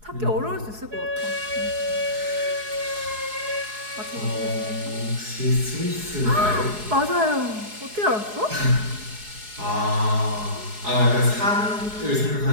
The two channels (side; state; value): left; late; 4.7 ms